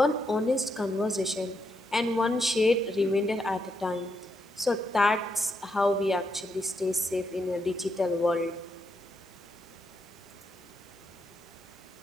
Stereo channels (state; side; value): normal; both; correlation 0.80